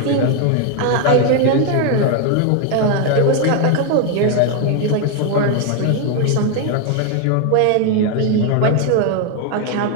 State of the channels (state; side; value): different; both; correlation 0.01